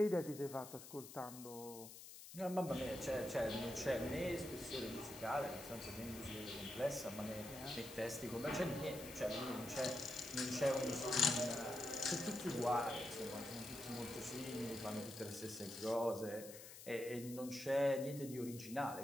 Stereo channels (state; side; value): noise; left; hiss, 13 dB below the sound